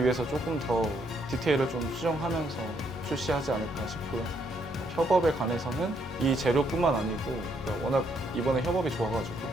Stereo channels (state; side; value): normal; both; correlation 0.72